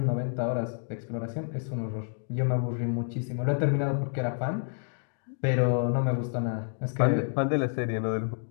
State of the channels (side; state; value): right; silent; digital silence